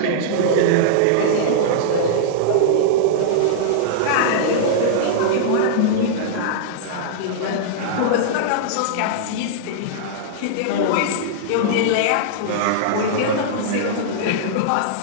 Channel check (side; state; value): both; different; correlation -0.02